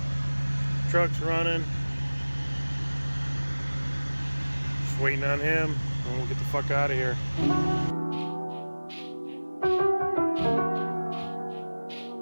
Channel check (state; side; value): inverted; both; correlation -1.00